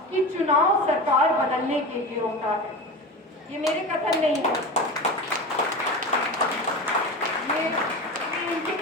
कि चुनाव सरकार बदलने के लिए होता है। ये मेरे कथन नहीं है, ये इनके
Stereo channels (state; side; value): normal; both; correlation 0.28